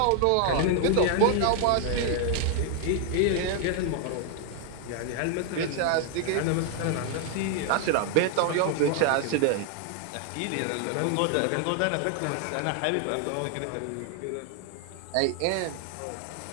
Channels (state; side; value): different; both; correlation 0.00